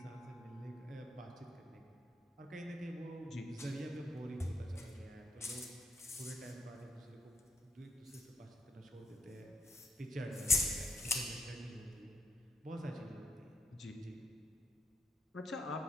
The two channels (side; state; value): both; normal; correlation 0.76